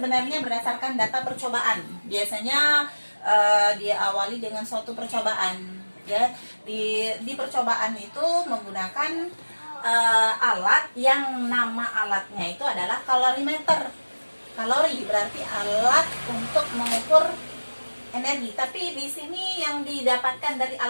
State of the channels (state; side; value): inverted; both; correlation -1.00